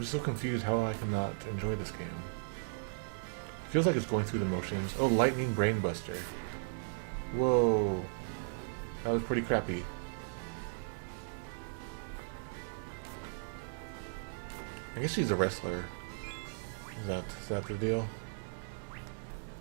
just so confused how I cannot enjoy this game. It feels like it's going through the motions. Oh, Lightning Brainbuster. Whoa. That was pretty crappy. I guess she's a wrestler. Is that the deal?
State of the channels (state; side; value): silent; left; digital silence